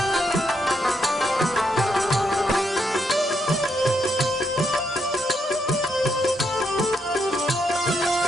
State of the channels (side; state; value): both; normal; correlation 0.78